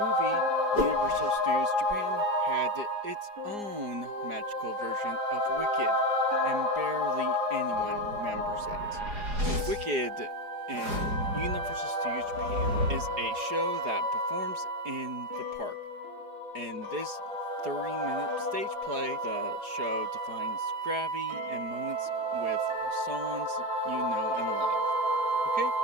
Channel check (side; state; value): left; late; 4.8 ms